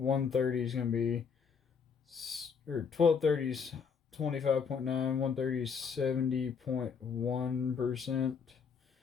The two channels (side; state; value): right; quieter; 6.2 dB